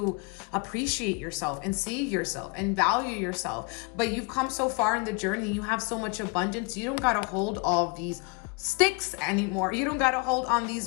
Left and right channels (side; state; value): right; quieter; 32.1 dB